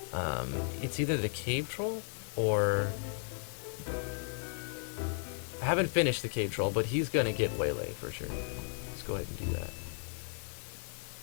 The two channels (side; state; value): right; silent; 54 dB below the other